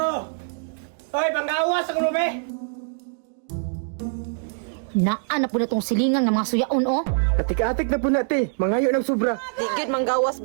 Hoy, panggawas ang be! Naan na po na tong silingan ng mga suyaon, oh. Atik-atik na po natin. Mangayo ng sobra. Di gyud manggawas,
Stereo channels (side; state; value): left; silent; digital silence